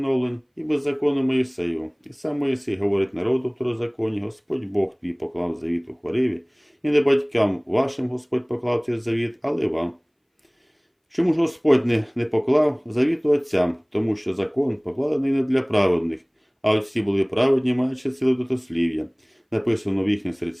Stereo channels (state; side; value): identical; both; correlation 1.00